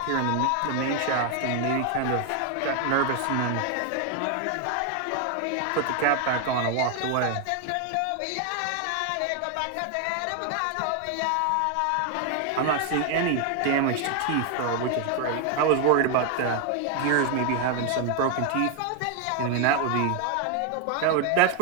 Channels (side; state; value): both; different; correlation 0.01